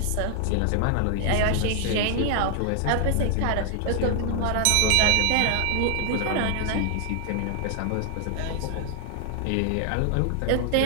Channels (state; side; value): different; both; correlation 0.00